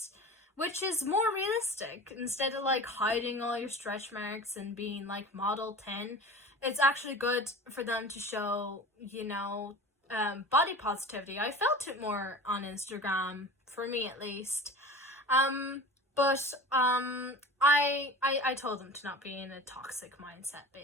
is more realistic. Instead of like hiding all your stretch marks and being like model 10, it's actually good for them to show, you know, body positivity. I felt it more on Instagram, for me at least. But I told them to not be in a toxic mindset,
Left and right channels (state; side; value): normal; both; correlation 0.37